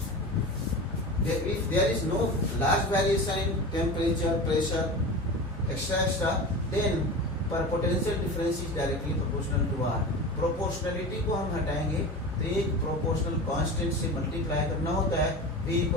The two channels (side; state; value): both; normal; correlation 0.30